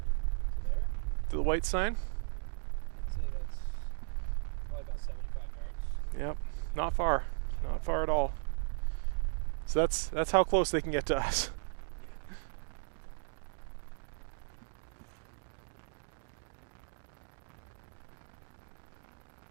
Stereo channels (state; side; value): silent; left; digital silence